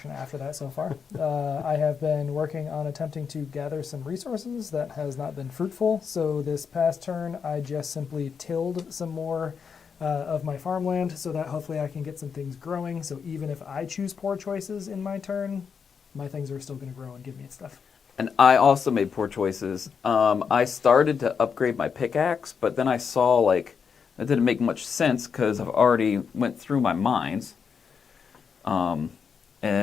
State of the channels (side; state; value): right; quieter; 6.3 dB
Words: after that so far. I have been working on attempting to gather some resources that has not been fruitful. So this past turn, I just simply tilled some more of my farmland so that hopefully I can get some things growing. So even if I choose poor choices in my turn, my things are still going to grow and give me stuff. And I also made poor choices. I started to upgrade my pickaxe, but then I saw like that didn't make much sense because I've already went through my mines.